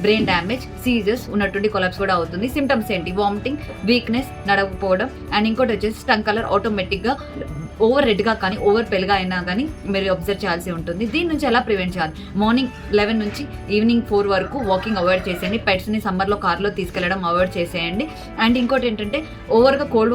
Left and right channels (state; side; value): identical; both; correlation 1.00